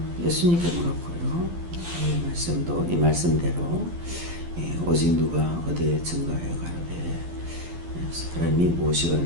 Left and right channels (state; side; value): late; left; 12 ms